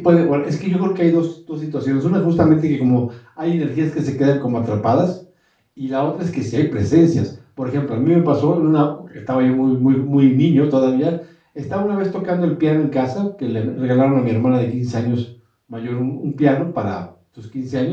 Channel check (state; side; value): identical; both; correlation 1.00